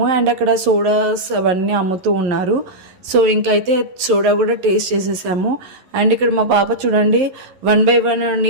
అండ్ అక్కడ సోడాస్ అవన్నీ అమ్ముతూ ఉన్నారు. సో ఇంకైతే సోడా కూడా టేస్ట్ చేసేసాము. అండ్ ఇక్కడ మా పాప చూడండి 1 by 1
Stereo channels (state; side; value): late; left; 11 ms